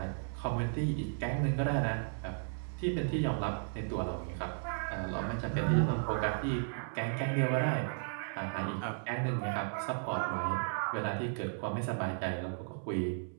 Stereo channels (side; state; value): left; silent; 55 dB below the other